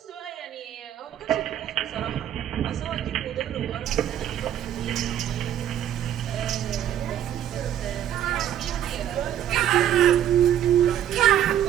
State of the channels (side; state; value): left; quieter; 10.8 dB